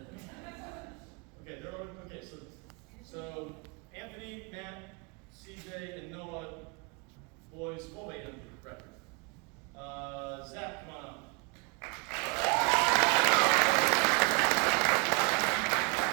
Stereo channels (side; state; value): left; quieter; 30.1 dB